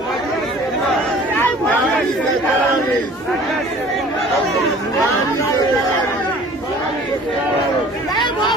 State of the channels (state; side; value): normal; both; correlation 0.48